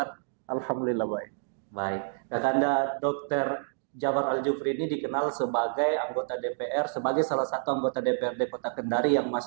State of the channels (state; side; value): silent; left; digital silence